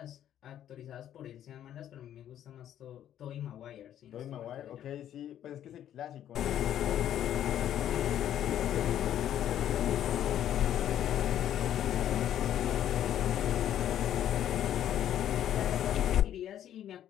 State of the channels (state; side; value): quieter; right; 10.9 dB